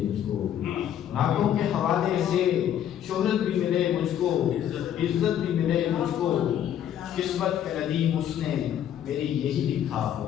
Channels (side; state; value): right; quieter; 10.2 dB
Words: مجھ کو. نعتوں کے حوالے سے شہرت بھی ملے مجھ کو، عزت بھی ملے مجھ کو. قسمت کے ندیم اس نے میری یہی لکھا ہو.